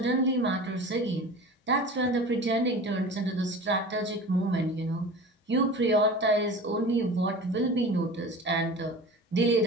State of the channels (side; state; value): both; normal; correlation 0.36